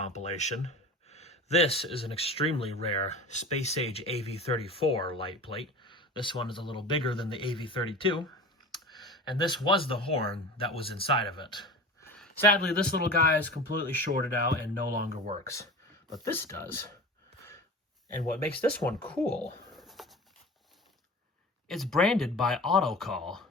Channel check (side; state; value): both; normal; correlation 0.35